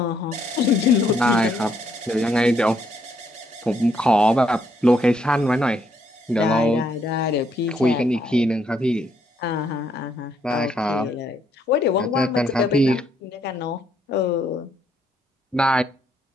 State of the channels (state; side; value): normal; both; correlation 0.72